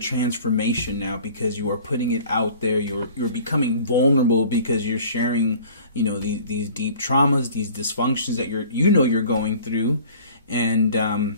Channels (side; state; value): both; inverted; correlation -0.47